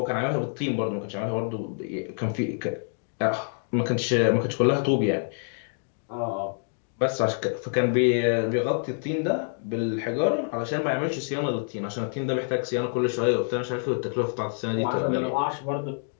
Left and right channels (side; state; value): right; silent; 60 dB below the other